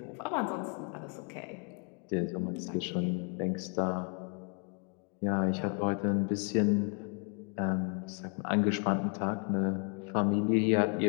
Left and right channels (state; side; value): quieter; right; 39.5 dB